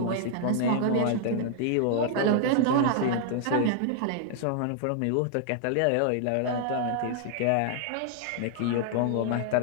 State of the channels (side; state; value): both; different; correlation 0.00